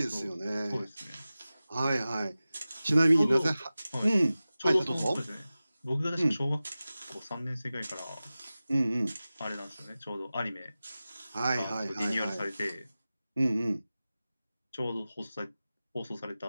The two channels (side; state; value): both; inverted; correlation -0.96